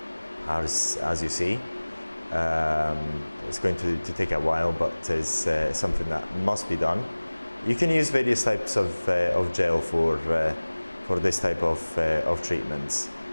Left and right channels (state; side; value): inverted; both; correlation -1.00